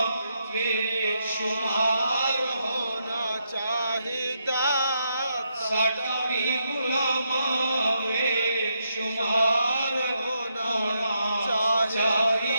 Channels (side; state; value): both; inverted; correlation -0.80